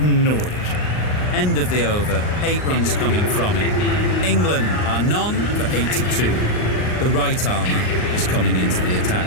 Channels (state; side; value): late; right; 39 ms